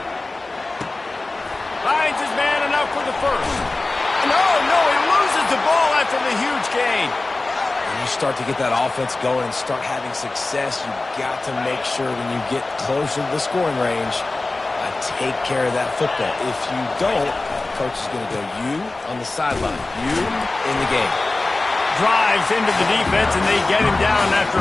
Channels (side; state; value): right; quieter; 3.2 dB